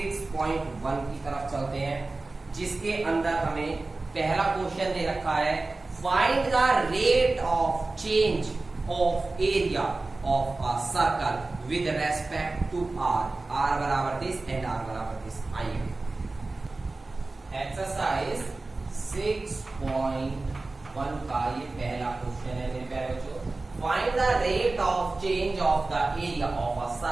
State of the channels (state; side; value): quieter; left; 3.3 dB